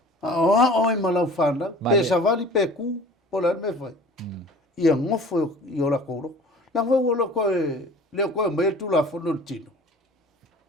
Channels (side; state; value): both; normal; correlation 0.44